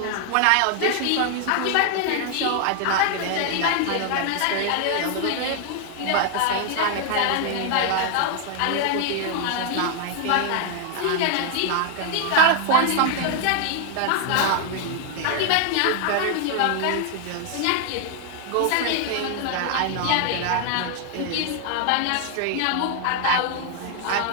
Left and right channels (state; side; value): different; both; correlation 0.00